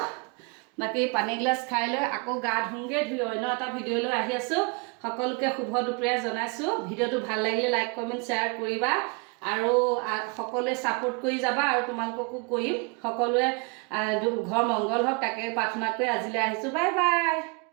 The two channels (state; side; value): quieter; left; 32.9 dB